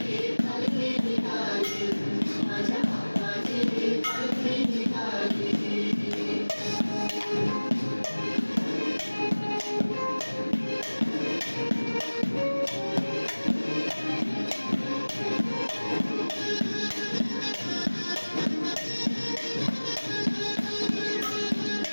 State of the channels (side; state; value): both; inverted; correlation -1.00